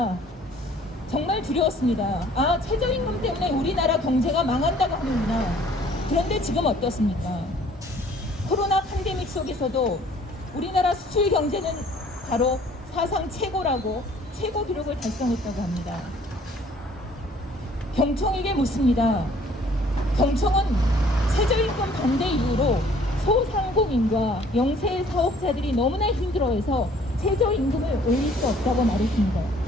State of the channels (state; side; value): normal; both; correlation 0.57